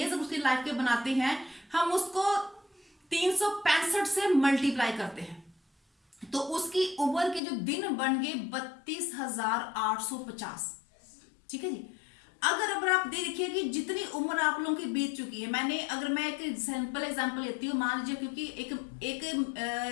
उसकी लाइफ के बनाते हैं, हम उसको 365 से मल्टीप्लाई करते हैं, तो उसकी उम्र के जो दिन बन गए 32,850। ठीक है जी। अगर आप देखिए कि जितनी उम्र आप लोगों की बीत चुकी है, अगर मैं एक सिंपल एग्जांपल लेती हूँ, मान लीजिए, क्योंकि एक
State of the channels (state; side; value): drops out; right; at 7.4 s